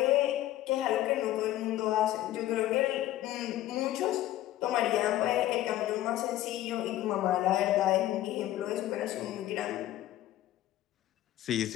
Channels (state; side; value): quieter; right; 14.1 dB